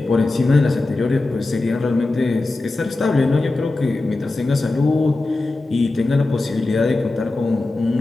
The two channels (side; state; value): right; quieter; 3.1 dB